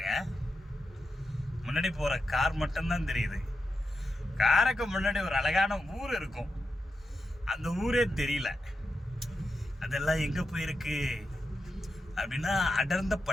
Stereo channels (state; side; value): normal; both; correlation 0.88